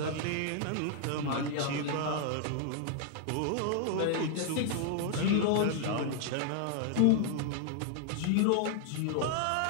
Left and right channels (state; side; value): different; both; correlation 0.00